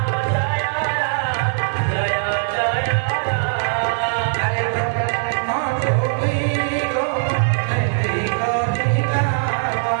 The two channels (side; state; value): left; silent; digital silence